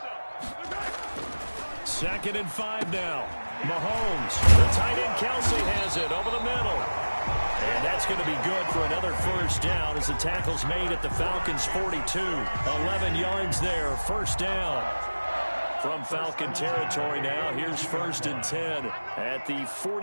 Second and 5 now. Mahomes. The tight end Kelsey has it over the middle. And that's going to be good for another first down as the tackle's made at the Falcons' 42. 11 yards there, first down. From Falcon territory now, here's first and 10 at the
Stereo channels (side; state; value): both; inverted; correlation -1.00